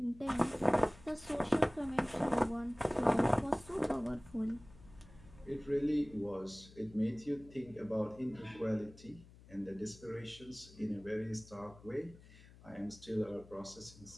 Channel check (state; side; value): noise; left; hum, 21 dB below the sound